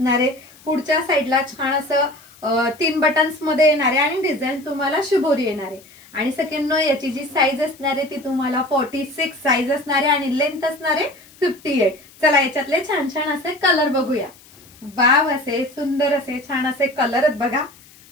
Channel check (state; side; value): noise; left; hiss, 25 dB below the sound